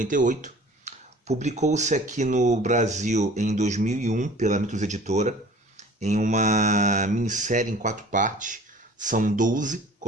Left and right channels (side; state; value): both; normal; correlation 0.47